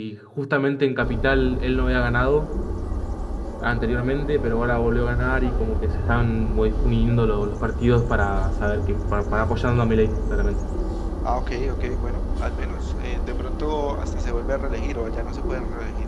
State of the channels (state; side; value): identical; both; correlation 1.00